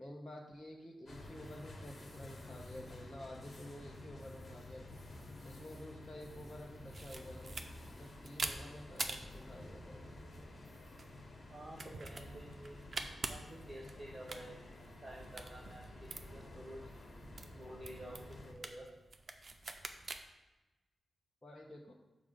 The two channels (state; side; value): normal; both; correlation 0.90